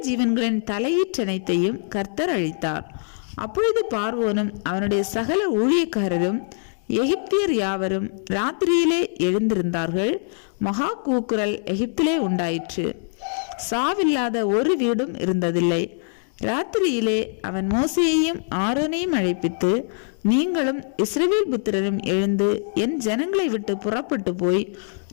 ஜீவன்களின் தலையீற்றனைத்தையும் கர்த்தர் அழித்தார். அப்பொழுது பார்வோனும் அவனுடைய சகல ஊழியக்காரரும் எகிப்தியர் யாவரும் ராத்திரியிலே எழுந்திருந்தார்கள். மகா கூக்குரல் எகிப்திலே உண்டாயிற்று. சாவில்லாத ஒரு வீடும் இருந்ததில்லை. ராத்திரியிலே அவன் மோசேயையும் ஆரோனையும் அழைப்பித்து, நீங்களும் இஸ்ரவேல் புத்திரரும் எழுந்து என் ஜனங்களை விட்டு புறப்பட்டு போய்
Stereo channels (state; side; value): silent; right; digital silence